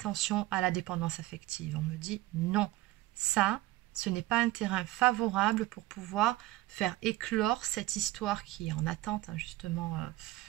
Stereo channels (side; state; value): left; quieter; 17.5 dB